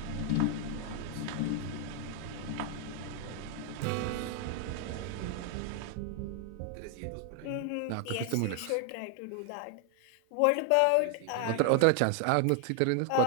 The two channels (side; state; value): both; different; correlation 0.00